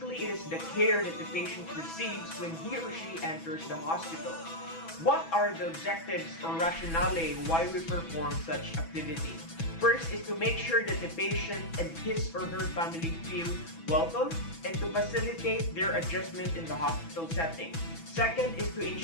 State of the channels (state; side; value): late; right; 6.1 ms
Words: it is the care that the patient receives when he or she enters the hospital. What are the objectives or rationale why we perform such activity? First is to make sure that the patient and his or her family feel welcome and to facilitate their adjustment in the hospital setting. Second is to